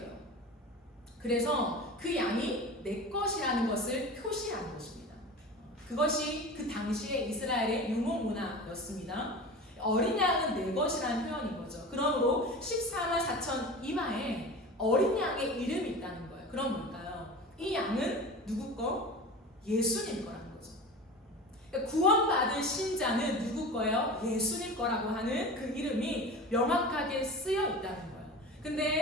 그래서 그 양이 내 것이라는 것을 표시하는 것입니다. 그것이 그 당시의 이스라엘의 유목 문화였습니다. 어린 양은 내 것이라는 표현인 거죠. 그러므로 14만 4천 이마에 어린 양의 이름이 있다는 거예요. 그럼 뭘까요? 이 양은 누구 거? 예수님 거라는 거죠. 그러니까 구원받은 신자는 누구 거예요? 예수님 거라고 하는 그 이름이 명확하게 쓰여 있다는 거예요.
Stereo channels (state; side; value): normal; both; correlation 0.33